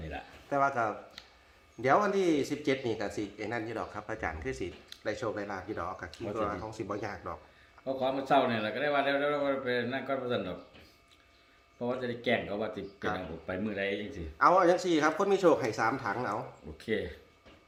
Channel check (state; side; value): identical; both; correlation 1.00